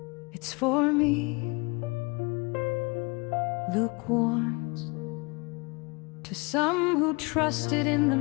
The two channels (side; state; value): right; quieter; 28.3 dB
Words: It's for me. Luke warns, to some who trusted in